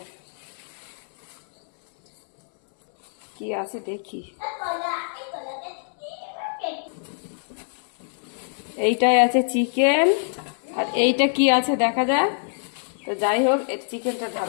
কি আছে দেখি। এইটাই আছে চিকেন, আর এইটা কি আছে দেখা যায়। তো যাই হোক, এর চিকেনটা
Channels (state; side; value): silent; right; digital silence